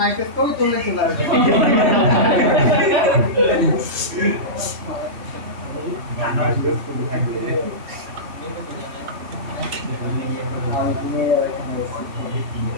কবি তুললে চলে আসবে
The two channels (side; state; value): left; late; 3.1 ms